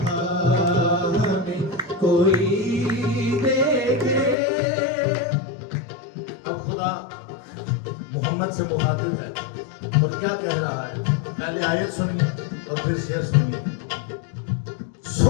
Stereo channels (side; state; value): right; drops out; at 4.4 s